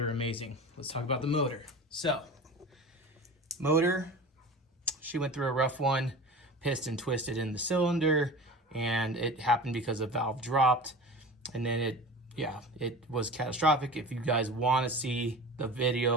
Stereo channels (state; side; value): normal; both; correlation 0.34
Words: amazing. Let's talk about the motor. So, motor, she went through a rough one, piston twisted in the cylinder, and it happened because a valve dropped, and then it was catastrophic. If you guys want to see the